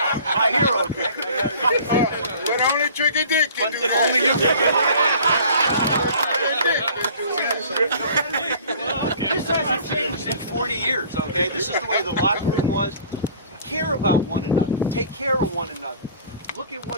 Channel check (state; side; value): inverted; both; correlation -0.48